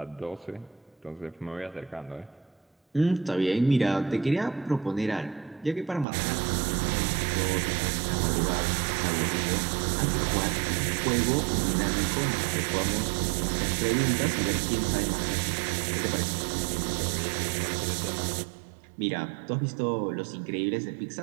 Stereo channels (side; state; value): left; drops out; at 6.1 s